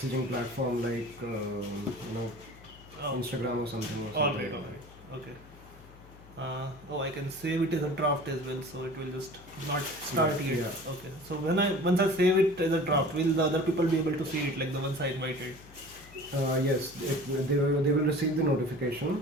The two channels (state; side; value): noise; left; hum, 21 dB below the sound